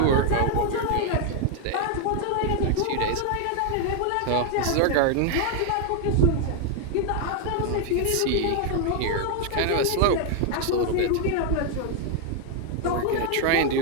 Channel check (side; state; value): both; different; correlation 0.00